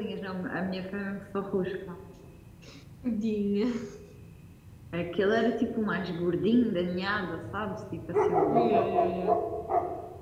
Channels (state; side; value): identical; both; correlation 1.00